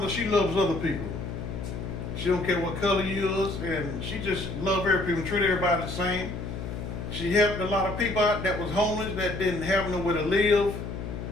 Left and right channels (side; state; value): left; noise; hum, 6 dB below the sound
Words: she loves other people. She don't care what color you is, and she just love every people, treat everybody the same. She helped a lot of people out that was homeless, that didn't have nowhere to live.